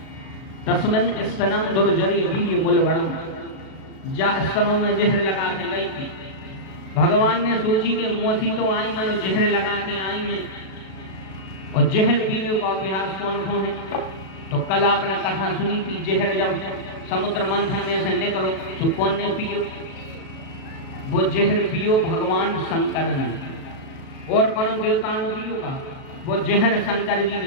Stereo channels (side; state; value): right; late; 36 ms